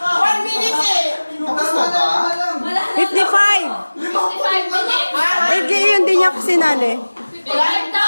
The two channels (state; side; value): inverted; both; correlation -1.00